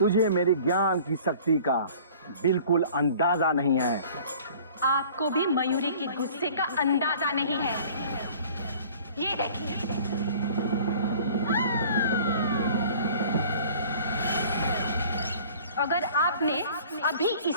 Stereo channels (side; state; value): both; inverted; correlation -0.48